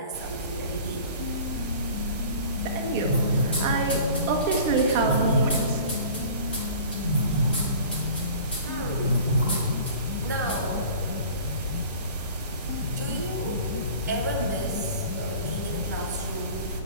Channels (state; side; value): inverted; both; correlation -0.43